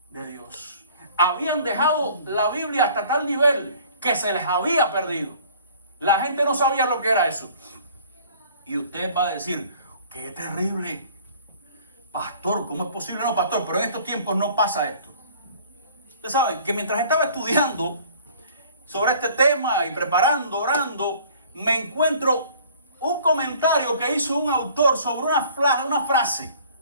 de Dios. Habían dejado la Biblia hasta tal nivel que se les había perdido. La gente no sabía lo que era eso. Y usted va a decir, qué terrible. Pastor, ¿cómo es posible? No, pastor, pero en estos tiempos no pasa esto. Ustedes saben que mientras estaba estudiando sobre este tema y preparando, orando, me encuentro un comentario que hizo un autor sobre una frase.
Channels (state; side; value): inverted; both; correlation -0.52